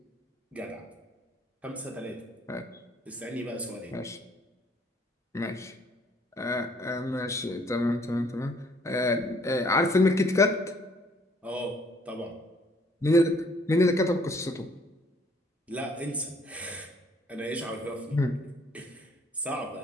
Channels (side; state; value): both; normal; correlation 0.61